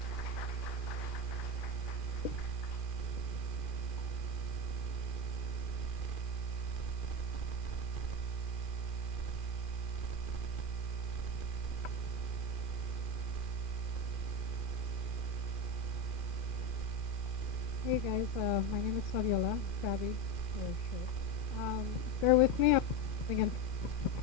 Hey guys, my name is Fabiola, Fabi, for short. Bear with me, I'm again.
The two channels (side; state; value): right; late; 2.4 ms